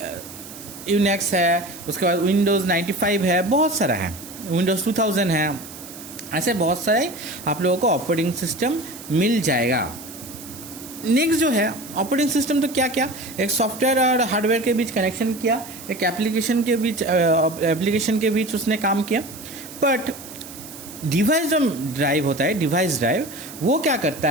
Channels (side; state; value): right; noise; hiss, 15 dB below the sound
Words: है, उसके बाद विंडोज़ 95 है, बहुत सारा है, विंडोज़ 2000 है, ऐसे बहुत सारे आप लोगों को ऑपरेटिंग सिस्टम मिल जाएगा। नेक्स्ट जो है ऑपरेटिंग सिस्टम, तो क्या क्या, एक सॉफ्टवेयर और हार्डवेयर के बीच कनेक्शन किया, एक एप्लीकेशन के बीच उसने काम किया। बट डिवाइस जो ड्राइव होता है, डिवाइस ड्राइव, वो क्या करता